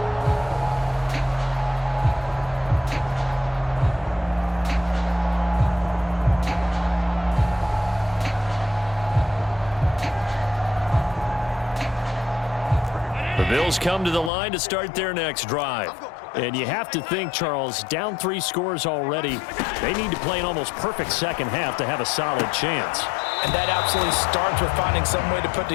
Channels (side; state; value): right; drops out; at 14.3 s